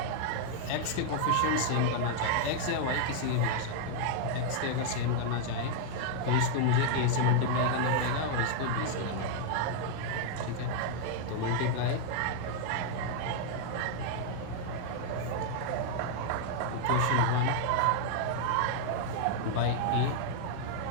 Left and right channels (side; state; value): both; different; correlation -0.01